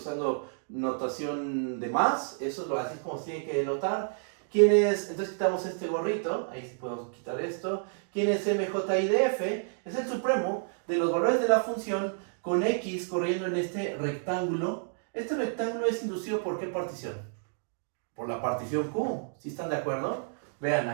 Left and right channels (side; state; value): left; silent; digital silence